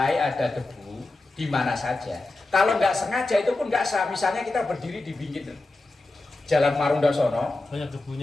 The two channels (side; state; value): right; quieter; 3.0 dB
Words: ada debu di mana saja. Kalau nggak sengaja itu pun nggak sah. Misalnya kita berdiri di pinggir Jalan Marunda sono. Banyak